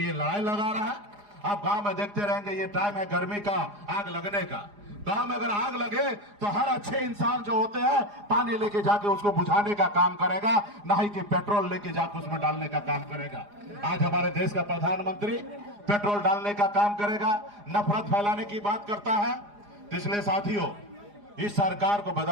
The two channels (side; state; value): left; late; 4.9 ms